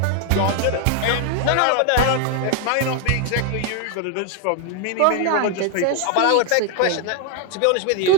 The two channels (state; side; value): different; both; correlation 0.00